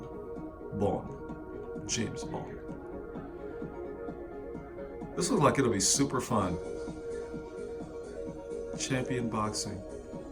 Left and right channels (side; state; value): both; identical; correlation 1.00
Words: James Bond. This looks like it'll be super fun. Champion Boxing.